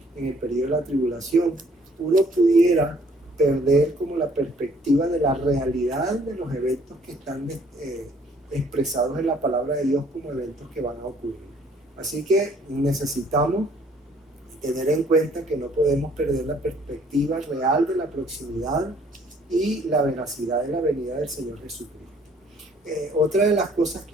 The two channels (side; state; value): both; normal; correlation 0.60